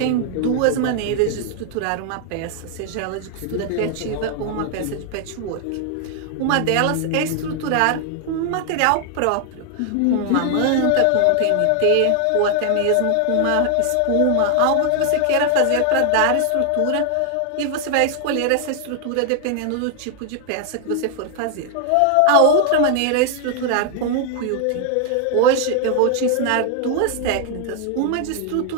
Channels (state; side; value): different; both; correlation 0.00